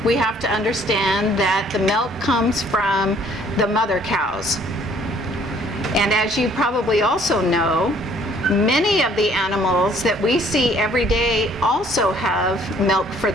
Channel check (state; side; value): normal; both; correlation 0.59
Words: we have to understand that the milk comes from the mother cows. And as you probably also know, many of the animals that we see every day also have milk for